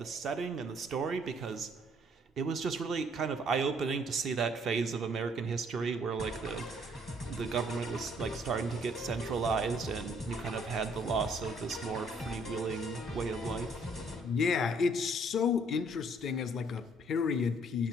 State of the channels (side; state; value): both; normal; correlation 0.63